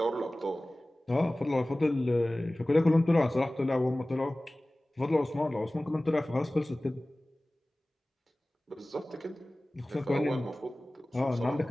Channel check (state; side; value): normal; both; correlation 0.98